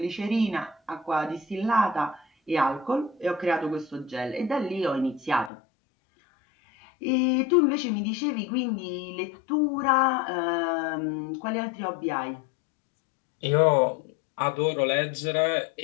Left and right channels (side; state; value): right; drops out; at 5.5 s